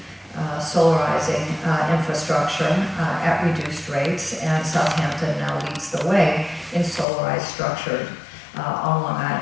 solarizing infrastructure at reduced rates, and Southampton now leads the way in solarized structure on Long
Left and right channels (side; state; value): right; drops out; at 7.1 s